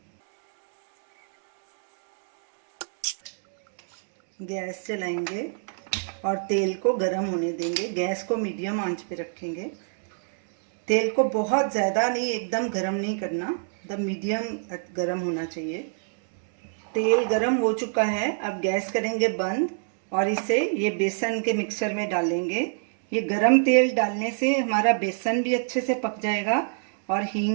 गैस जलाएंगे और तेल को गरम होने देंगे। गैस को मीडियम आंच पे रखेंगे। तेल को बहुत ज़्यादा नहीं, एकदम गरम नहीं करना, एकदम मीडियम गरम होना चाहिए। तेल गरम हो चुका है। अब गैस करेंगे बंद और इसे ये बेसन के मिक्सचर में डालेंगे। ये गरम तेल डालने से हमारा बेसन भी अच्छे से पक जाएगा और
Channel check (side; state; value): left; silent; digital silence